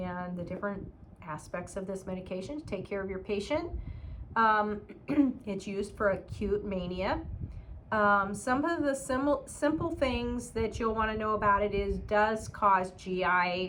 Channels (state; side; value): identical; both; correlation 1.00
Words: the different aspects of this medication to take care of your patient. It's used for acute mania. Some of the simple things that you'll want to know about it is does cause